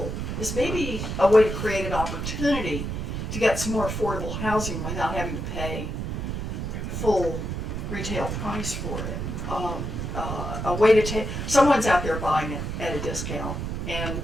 a way to create an opportunity to get some more affordable housing without having to pay full retail price for it. A way to take, someone's out there buying it at a discount, and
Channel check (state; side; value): noise; right; rumble, 4 dB below the sound